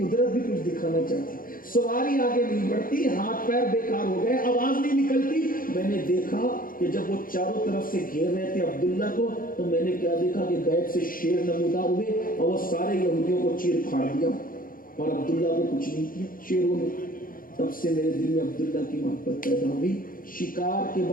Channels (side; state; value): right; late; 0.41 ms